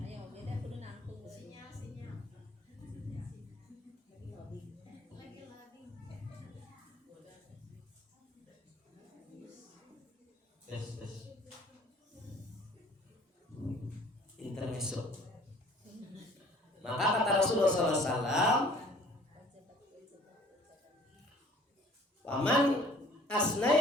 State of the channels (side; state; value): both; normal; correlation 0.53